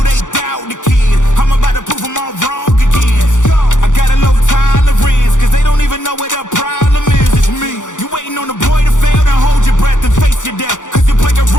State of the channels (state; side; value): late; right; 0.86 ms